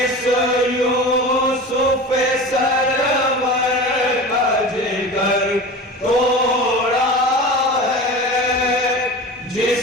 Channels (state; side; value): normal; both; correlation 0.32